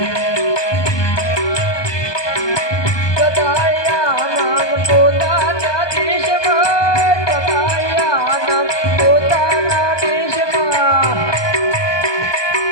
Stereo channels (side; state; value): right; late; 1.2 ms